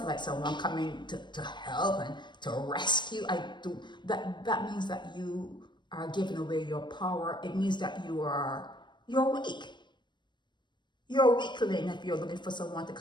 like someone coming to help and to rescue. That means that you are giving away your power. It means that you're weak. You're a weakling if you're looking for someone to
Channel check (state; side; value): late; right; 0.22 ms